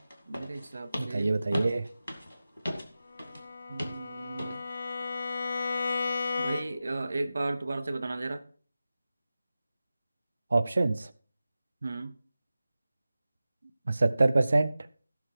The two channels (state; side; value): inverted; both; correlation -0.95